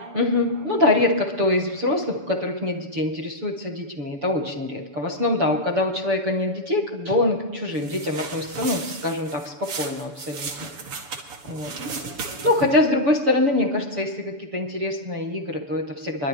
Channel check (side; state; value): left; late; 7.0 ms